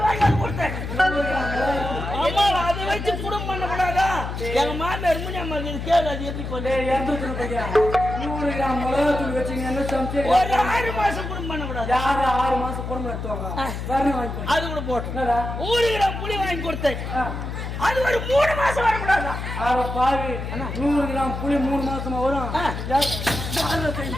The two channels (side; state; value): left; noise; hum, 6 dB below the sound